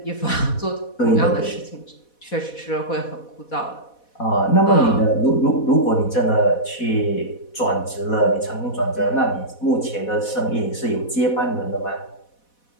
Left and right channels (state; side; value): late; right; 4.1 ms